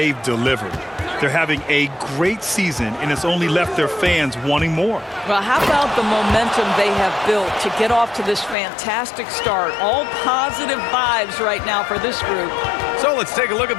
delivered. They're having a great season, and it's only left their fans wanting more. Well, how about the momentum they have built to get off to this fantastic start? All positive vibes right now for this group. So let's take a look at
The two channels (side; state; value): right; drops out; at 8.6 s